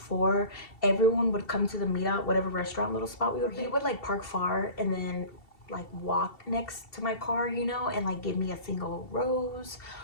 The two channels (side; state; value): right; late; 2.7 ms